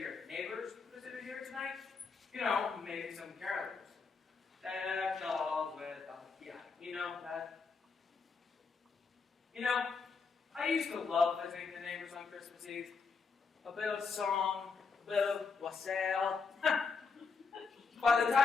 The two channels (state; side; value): quieter; right; 5.0 dB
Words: neighbors visit here tonight? You know, maybe some carolers. Dolls with, yeah, you know that. You know, I used to love visiting the neighbors on Christmas Eve. A bit of song, a bit of wassail. By the